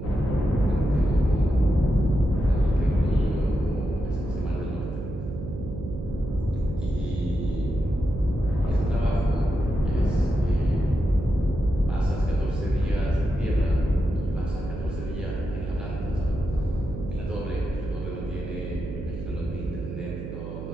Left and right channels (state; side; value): noise; right; hum, 8 dB below the sound